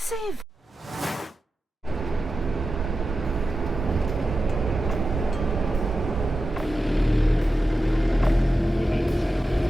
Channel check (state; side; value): normal; both; correlation 0.91